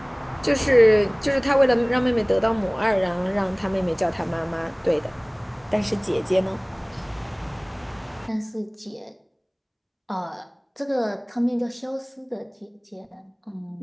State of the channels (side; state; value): both; identical; correlation 1.00